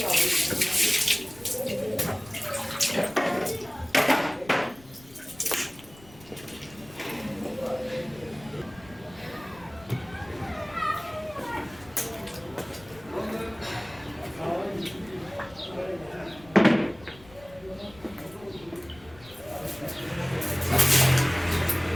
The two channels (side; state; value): left; noise; rumble, 23 dB below the sound